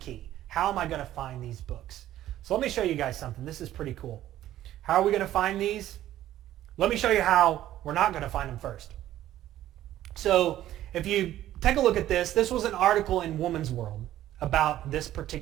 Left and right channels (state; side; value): quieter; left; 13.2 dB